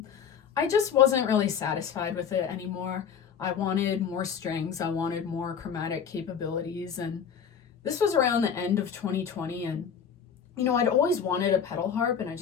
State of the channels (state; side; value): quieter; right; 7.3 dB